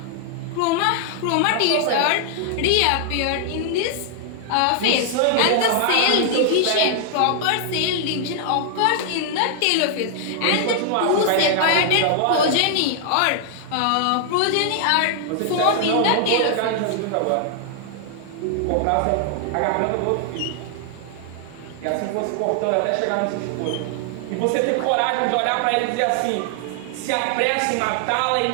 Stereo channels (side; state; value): both; different; correlation 0.00